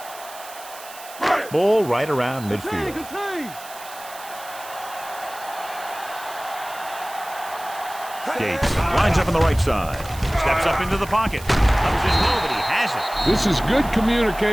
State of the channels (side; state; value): right; noise; hiss, 16 dB below the sound